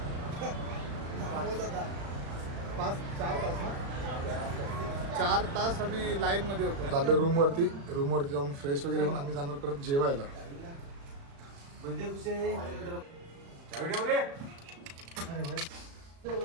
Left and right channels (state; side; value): late; left; 36 ms